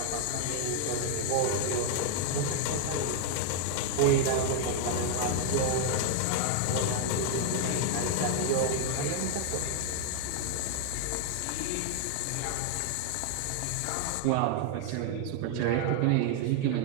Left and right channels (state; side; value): different; both; correlation 0.00